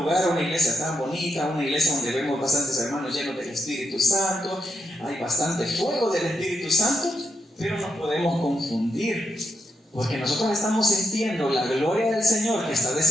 a una iglesia tan bonita, a una iglesia donde vemos bastantes hermanos llenos del Espíritu Santo, hay bastante fuego del Espíritu Santo, pero nos podemos confundir, porque nosotros estamos sintiendo la gloria del Señor que está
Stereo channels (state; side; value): normal; both; correlation 0.82